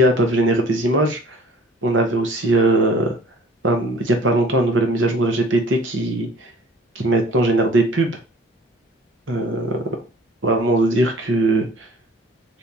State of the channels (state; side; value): normal; both; correlation 0.50